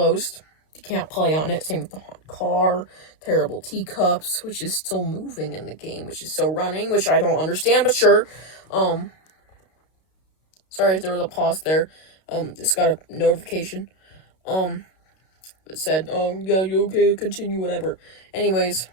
You can't play on it. Same with the haunted car, terrible teacups, which is still moving in the game, which is still running, which I don't understand, but sure. Sorry if there was a pause there. Just got a notification. It said, yeah, you okay, continue, whatever. Anyways.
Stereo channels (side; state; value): right; late; 32 ms